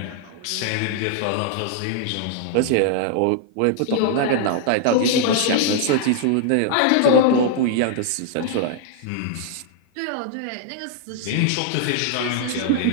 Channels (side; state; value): both; different; correlation 0.00